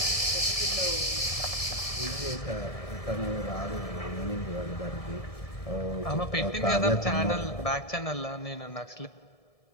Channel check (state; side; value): late; right; 1.7 ms